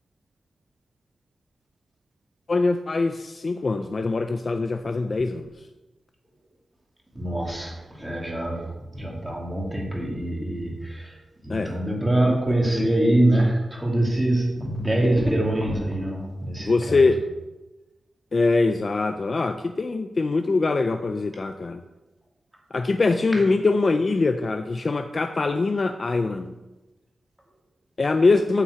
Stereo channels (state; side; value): normal; both; correlation 0.94